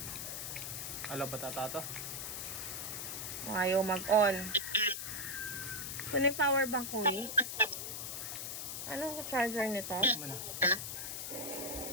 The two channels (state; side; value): noise; left; hiss, 5 dB below the sound